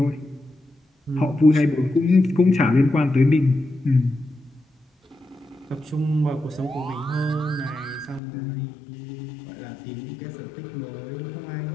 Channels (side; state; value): right; drops out; at 8.2 s